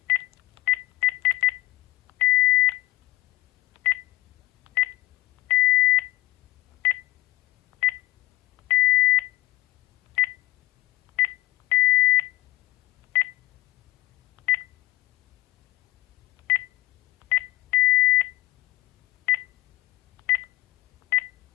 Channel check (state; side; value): quieter; right; 18.3 dB